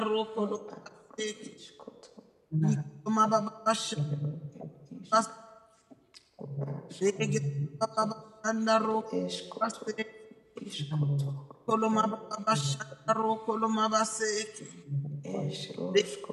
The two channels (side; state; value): both; identical; correlation 1.00